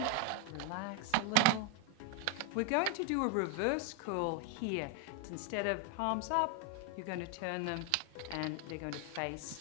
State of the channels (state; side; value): different; both; correlation 0.01